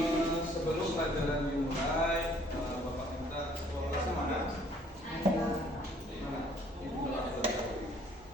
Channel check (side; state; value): both; normal; correlation 0.60